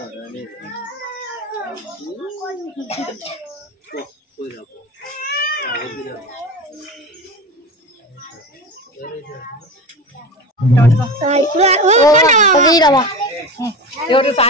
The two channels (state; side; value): normal; both; correlation 0.27